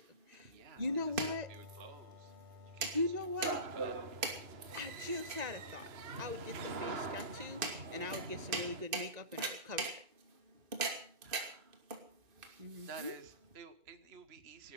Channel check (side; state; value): left; late; 2.5 ms